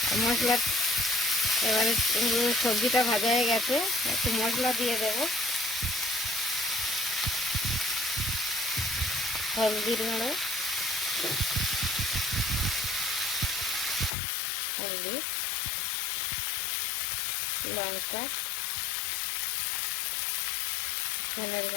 মশলা এবারে সবজিটা ভাজা হয়ে গেছে, একটু মশলা দিয়ে দেবো। হলদির গুঁড়ো, হলদি, লঙ্কা, ধনের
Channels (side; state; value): right; drops out; at 14.1 s